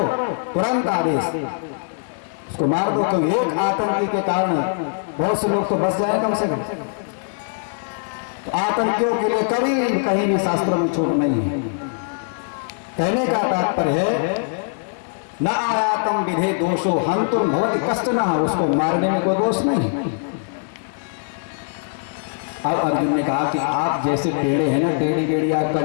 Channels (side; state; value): right; silent; digital silence